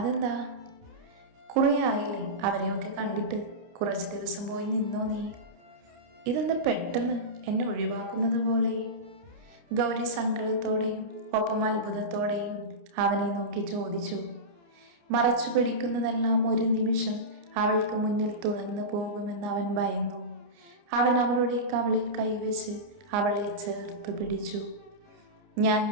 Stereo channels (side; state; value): left; late; 29 ms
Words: കുറേ ആയില്ലേ അവരെയൊക്കെ കണ്ടിട്ട്, കുറച്ച് ദിവസം പോയി നിന്നോ നീ. ഇതെന്താ പെട്ടെന്ന് എന്നെ ഒഴിവാക്കുന്നത് പോലെ? ഗൗരി സങ്കടത്തോടെയും ഒപ്പം അത്ഭുതത്തോടെയും അവനെ നോക്കി ചോദിച്ചു. മറച്ചു പിടിക്കുന്നതെല്ലാം ഒരു നിമിഷം അവൾക്ക് മുന്നിൽ തുറന്നു പോകുമെന്ന് അവൻ ഭയന്നു. അവൻ അവളുടെ കവിളിൽ കൈവച്ച് അവളെ ചേർത്ത് പിടിച്ചു. ഞാൻ